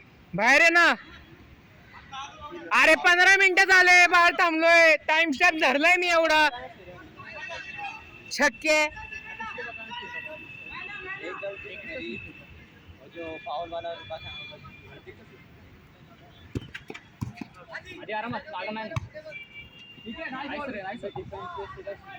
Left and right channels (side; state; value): both; identical; correlation 1.00